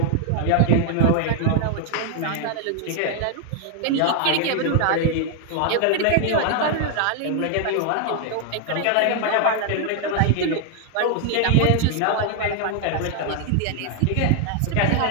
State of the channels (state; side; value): different; both; correlation 0.00